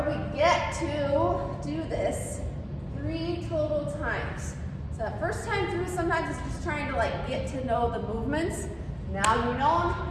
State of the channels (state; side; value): identical; both; correlation 1.00